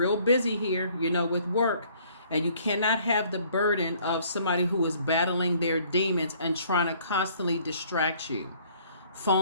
busy here, with work. And you cannot have the burden of somebody who is battling their demons and trying to constantly distract you.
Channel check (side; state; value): both; inverted; correlation -0.59